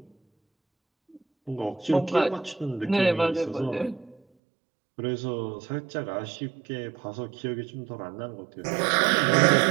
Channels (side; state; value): left; drops out; at 4.2 s